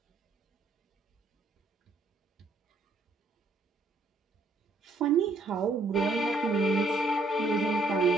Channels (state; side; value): quieter; left; 3.1 dB